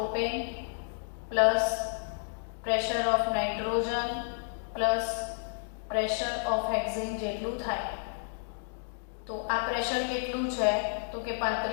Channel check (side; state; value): right; silent; digital silence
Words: plus pressure of nitrogen plus pressure of hexane જેટલું થાય. તો આ પ્રેશર કેટલું છે? તો કે